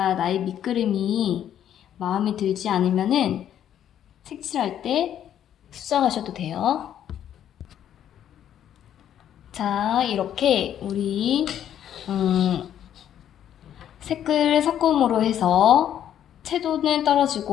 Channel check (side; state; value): right; quieter; 10.3 dB